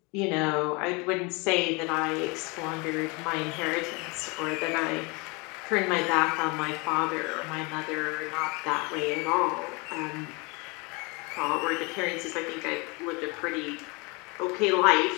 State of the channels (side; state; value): right; quieter; 28.3 dB